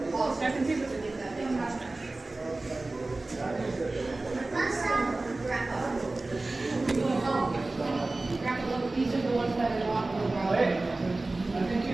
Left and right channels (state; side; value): quieter; left; 3.1 dB